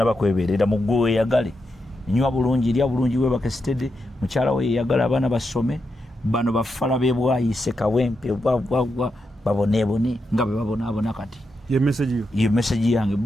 kwebeerera mu gwe weeyagale nywa bulungi lya bulungi webake stede mukyala we yeeyagala abaana basome bano bafala bebwayise kawempe bwabwabwa baboneebone nga bwe babonaabona kati ye message yange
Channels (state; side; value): normal; both; correlation 0.86